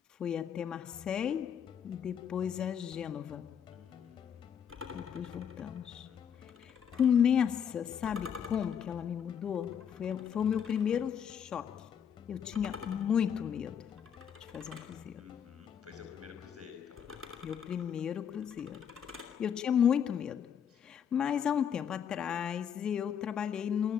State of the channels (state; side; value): quieter; right; 8.2 dB